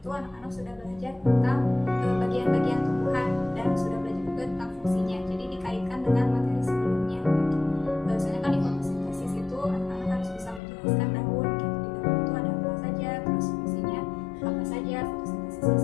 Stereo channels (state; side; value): drops out; right; at 10.6 s